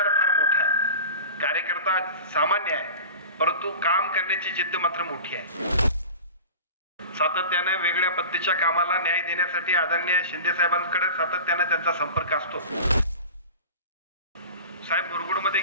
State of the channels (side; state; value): both; inverted; correlation -0.35